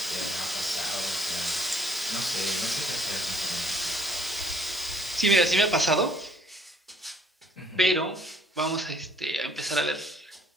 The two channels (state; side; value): normal; both; correlation 0.63